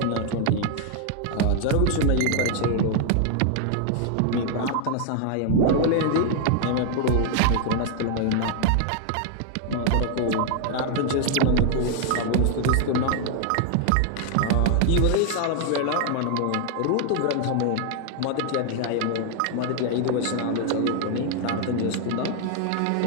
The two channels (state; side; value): different; both; correlation 0.00